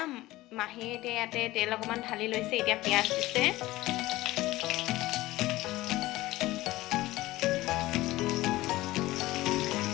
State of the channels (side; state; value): right; quieter; 17.8 dB